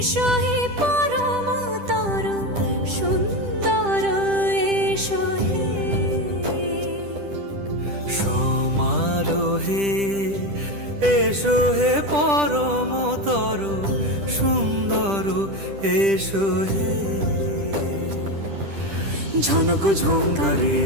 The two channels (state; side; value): late; left; 10 ms